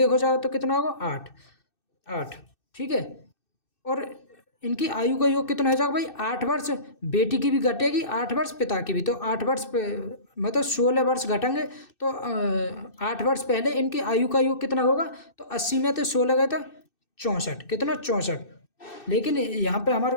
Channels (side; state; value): right; late; 2.6 ms